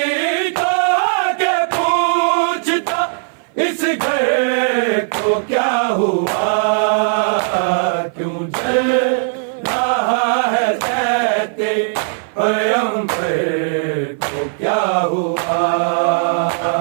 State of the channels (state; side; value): silent; left; 56 dB below the other